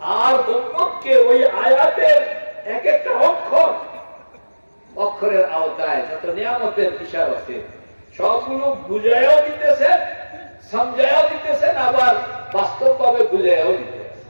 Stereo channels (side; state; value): both; inverted; correlation -1.00